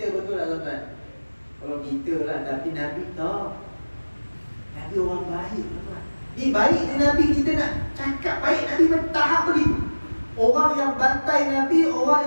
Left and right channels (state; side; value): inverted; both; correlation -1.00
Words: betul tak tuan-tuan? Kalau kita lah, tapi Nabi tak. Nabi orang baik tuan-tuan. Ni baik ni Nabi, kita nak cakap baik Nabi bertahap begitu. Orang yang bantai Nabi, orang